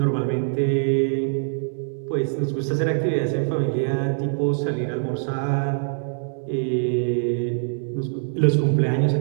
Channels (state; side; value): silent; left; digital silence